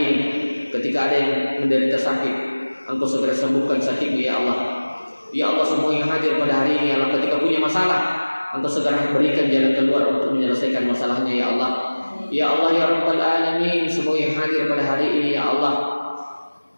ketika ada yang menderita sakit, Engkau segera sembuhkan sakitnya ya Allah. Ya Allah, semua yang hadir pada hari ini ya Allah, ketika punya masalah, Engkau segera berikan jalan keluar untuk menyelesaikan masalahnya ya Allah. Ya Allah ya Rabbal Alamin, semua yang hadir pada hari ini ya Allah,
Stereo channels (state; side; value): inverted; both; correlation -1.00